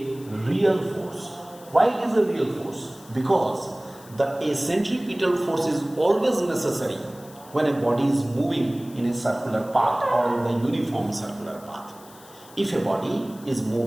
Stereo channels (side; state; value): left; noise; hiss, 22 dB below the sound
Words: real force. Why it is a real force? Because a centripetal force is always necessary when a body is moving in a circular path or in the uniform circular path. If a body is